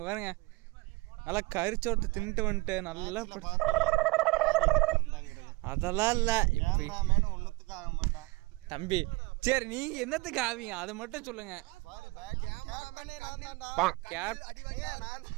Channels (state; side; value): quieter; left; 24.0 dB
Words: பாருங்க, நல்லா கரிச்சோட்டு தின்ட்டு வந்துட்டு நல்லா அதெல்லாம் இல்லை. இப்படி ஒன்னுத்துக்கு ஆக மாட்டான் தம்பி. சரி, நீங்க என்னத்துக்கு ஆவீங்க அதை மட்டும் சொல்லுங்க.